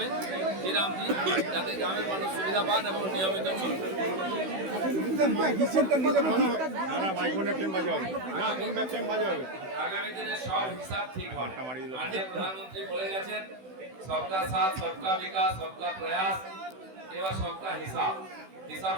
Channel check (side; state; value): left; late; 16 ms